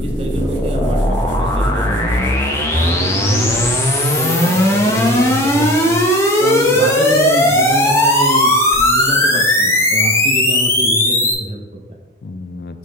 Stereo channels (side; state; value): both; normal; correlation 0.33